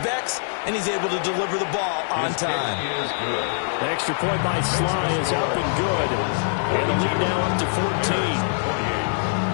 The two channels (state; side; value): silent; right; 59 dB below the other